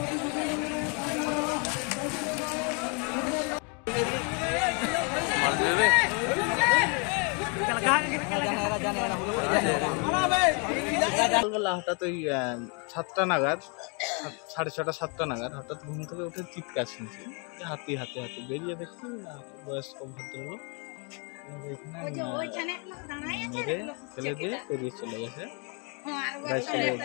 হঠাৎ ওই 7টা নাগাদ, 6:30 7টা নাগাদ হঠাৎ ঘুম থেকে উঠে চিৎকার শুনছি, হাতি হাতি হাতি। বেরিয়ে দেখছি বয়স্ক ভদ্রলোক ফেলে দিয়ে বেরিয়ে চলে গেছে।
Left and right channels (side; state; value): right; quieter; 35.3 dB